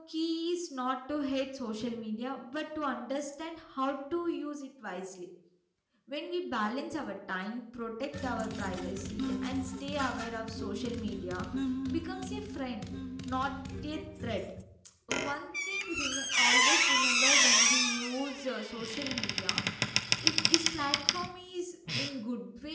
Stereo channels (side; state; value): both; identical; correlation 1.00